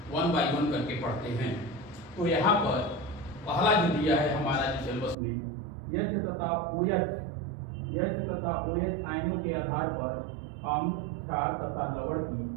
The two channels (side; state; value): left; drops out; at 5.2 s